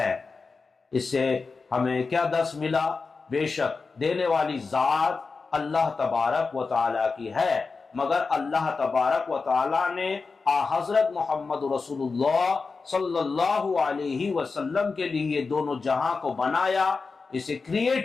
اس سے ہمیں کیا درس ملا؟ بے شک دینے والی ذات اللہ تبارک و تعالیٰ کی ہے، مگر اللہ تبارک و تعالیٰ نے حضرت محمد رسول اللہ صلی اللہ علیہ وسلم کے لیے یہ دونوں جہاں کو بنایا، اسے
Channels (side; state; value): right; quieter; 4.4 dB